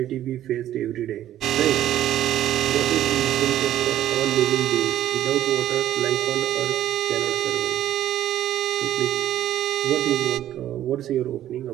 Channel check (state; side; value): quieter; left; 12.3 dB